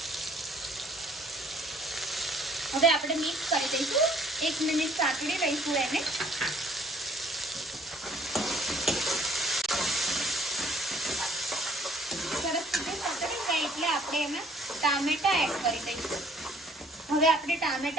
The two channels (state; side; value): normal; both; correlation 0.60